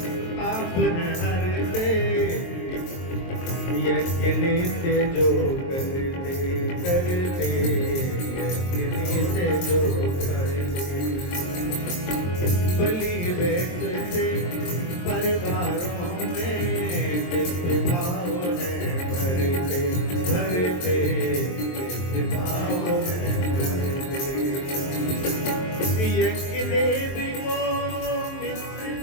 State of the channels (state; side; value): late; right; 23 ms